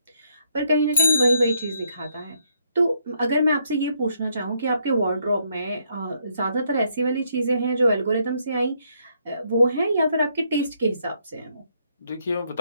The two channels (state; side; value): inverted; both; correlation -0.73